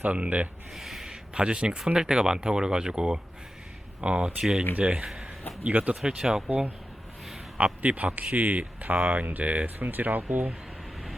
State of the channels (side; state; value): both; normal; correlation 0.91